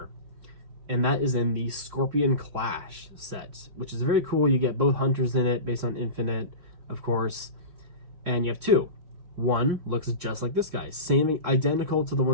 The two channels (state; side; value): late; left; 3.6 ms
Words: And that is in the Scorpion Clash set, which is very cool. You get both hunters in it based on Infinite, of course. And you have two. One looks just like this guy, same, identical to the